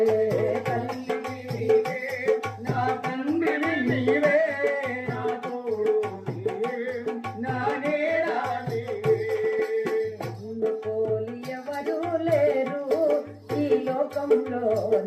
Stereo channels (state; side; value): identical; both; correlation 1.00